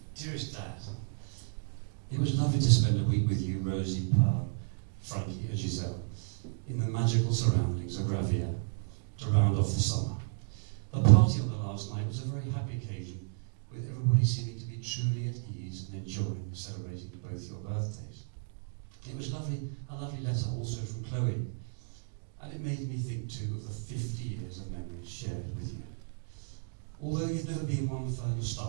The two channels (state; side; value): silent; left; digital silence